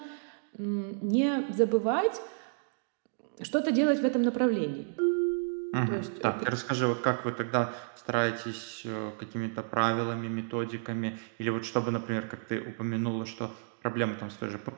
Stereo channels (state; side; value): silent; left; digital silence